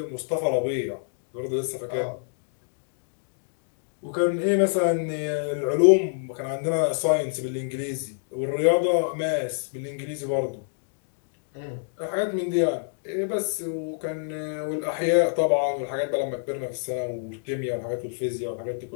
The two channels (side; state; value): right; silent; digital silence